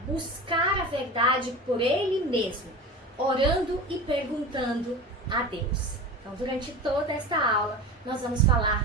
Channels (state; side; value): normal; both; correlation 0.30